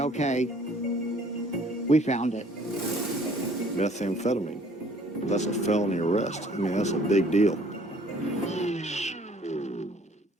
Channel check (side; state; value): both; normal; correlation 0.57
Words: we found it. Methamphetamine. That's a felony arrest. I mean, that's a big deal.